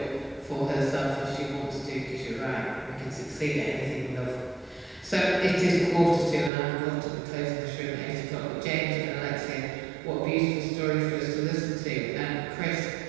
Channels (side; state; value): left; drops out; at 6.5 s